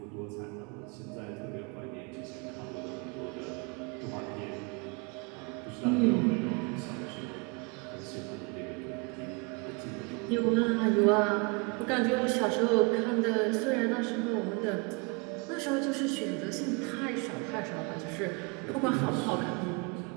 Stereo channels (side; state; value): left; quieter; 31.2 dB